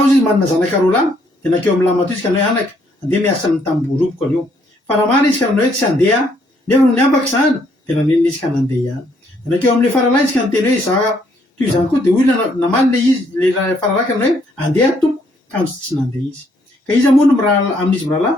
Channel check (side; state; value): both; normal; correlation 0.69